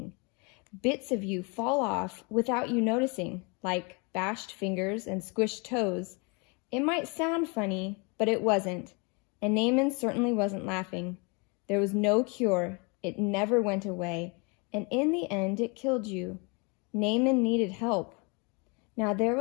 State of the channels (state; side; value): quieter; right; 31.7 dB